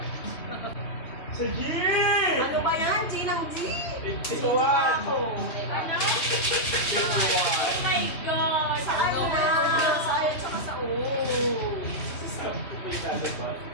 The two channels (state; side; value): late; right; 2.8 ms